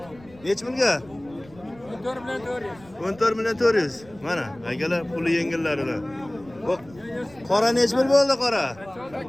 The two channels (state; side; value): noise; right; rumble, 23 dB below the sound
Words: oldi. Nech pulga? 14 million 400. 14 million 400. Mana akalar puli yengillaridan. Bu qora nech pul bo'ldi qora?